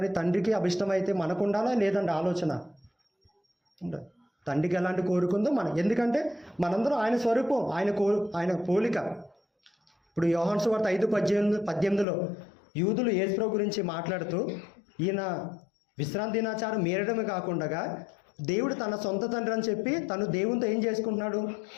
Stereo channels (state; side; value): drops out; right; at 12.1 s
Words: తండ్రికి అభిష్టమైతే మనకు ఉండాలా లేదండి ఆలోచన? తండ్రికి ఎలాంటి కోరుకుందో మనం, ఎందుకంటే మనందరం ఆయన స్వరూపం, ఆయన పోలిక. ఇప్పుడు యోహాను సువార్త 5:18 యూదులు యేసుప్రభు గురించి మాట్లాడుతూ, ఈయన విశ్రాంతి దినాచారం మీరడమే కాకుండా దేవుడు తన సొంత తండ్రి అని చెప్పి తను దేవునితో ఏం చేసుకుంటున్నాడు?